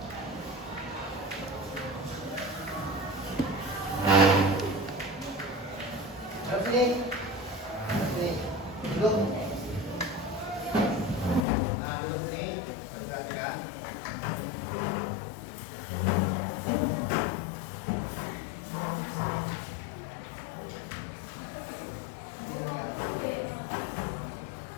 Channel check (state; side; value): drops out; right; at 11.5 s